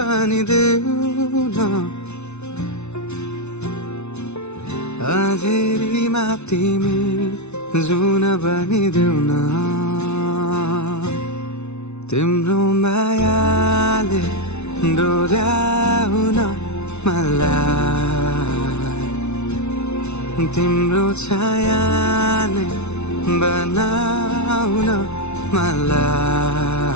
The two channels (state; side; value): late; right; 0.81 ms